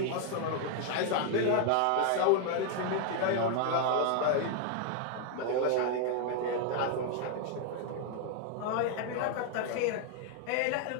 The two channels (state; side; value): different; both; correlation 0.00